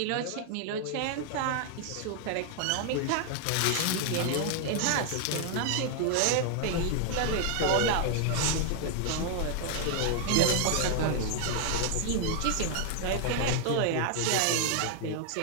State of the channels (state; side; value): different; both; correlation 0.00